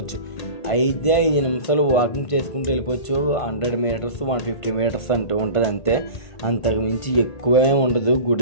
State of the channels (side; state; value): right; late; 1.5 ms